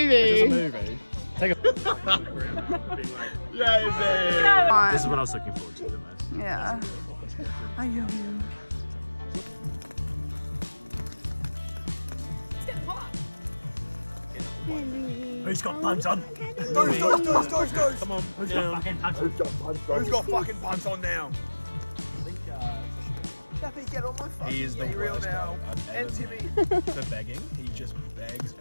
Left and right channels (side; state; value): both; inverted; correlation -1.00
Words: it's a movie. Take a. This is what I was looking forward to the most. Yeah. I love you. Who's got punch on? Doors. Come on, who's got fucking punch on? Who's got fucking punch on now? He is the worst now. And Timmy. For begging, he just begs